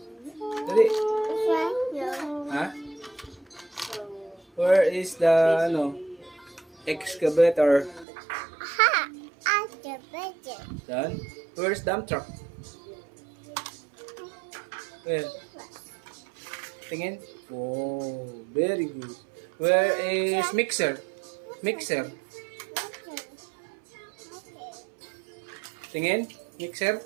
Dali. Ha? Where is the, excavator? Done. Where's dump truck? Where? Tingin. Oh, very good. Where is mixer? Mixer. Tingin. Mixer.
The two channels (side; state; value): left; drops out; at 8.1 s